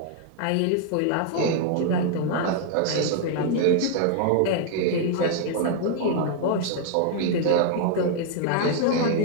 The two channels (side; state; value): both; different; correlation 0.00